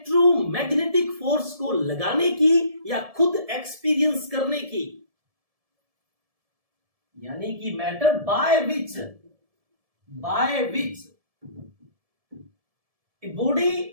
फोर्स को लगाने की या खुद एक्सपीरियंस करने की। यानी कि matter by which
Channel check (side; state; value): left; late; 1.7 ms